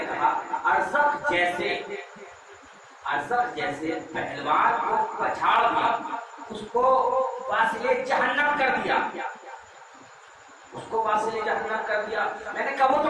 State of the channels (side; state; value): both; identical; correlation 1.00